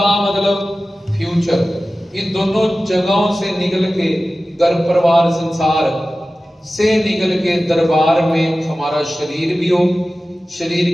मतलब फ्यूचर, इन दोनों जगहों से निकल के घर परिवार संसार से निकल के दरबार में हमारा शरीर भी हो, शरीर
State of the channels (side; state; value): both; normal; correlation 0.96